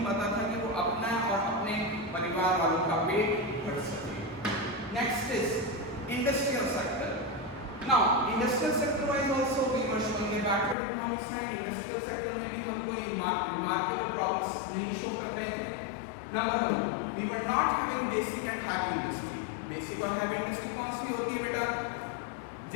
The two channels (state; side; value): drops out; right; at 10.8 s